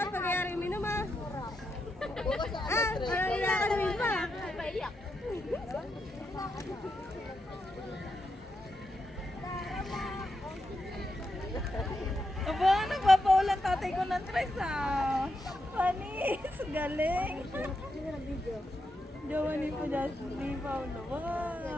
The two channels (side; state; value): both; normal; correlation 0.84